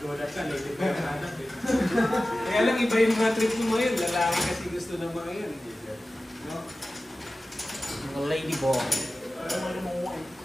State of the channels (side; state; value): both; normal; correlation 0.95